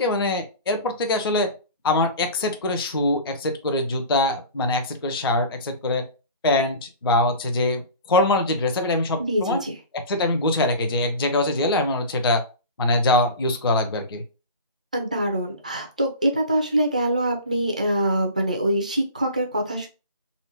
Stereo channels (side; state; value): both; inverted; correlation -0.36